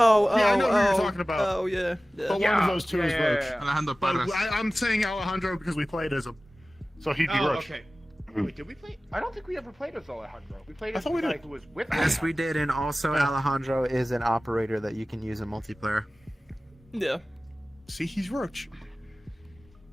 Yeah, I know who you're oh. talking about. Oh, yeah. Yeah. But one of those two is Roach. Alejandro But Parras. I'm saying Alejandro because we played as him, so he'd be Oh, Roach. okay. Wait, did we play? I don't think we ever played as Alejandro. We played I as thought the we guy did. who was with Yes, we Alejandro. did, and also Yeah. Alejandro is an operator that you can use in multiplayer. Yeah. See, he's Roach.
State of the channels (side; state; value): both; normal; correlation 0.97